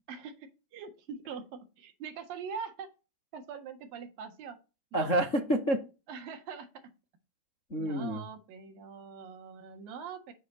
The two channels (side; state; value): right; late; 3.7 ms